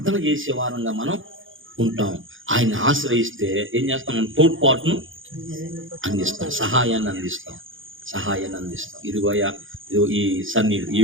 చేసే వారంగా మనం ఉంటాం. ఆయన ఆశ్రయిస్తే ఏం చేస్తాం? మనం తోడ్పాటును అందిస్తాం, సహాయాన్ని అందిస్తాం. ఇదిగోయా, ఇదిగో ఈ సన్నీళ్ళు, ఈ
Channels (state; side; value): late; left; 0.58 ms